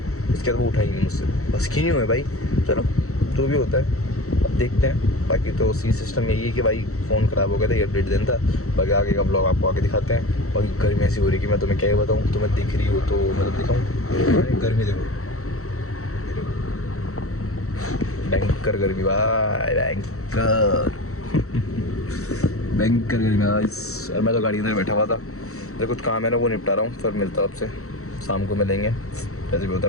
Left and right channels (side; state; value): right; late; 0.64 ms